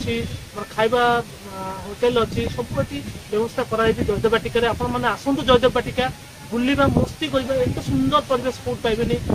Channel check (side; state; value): both; identical; correlation 1.00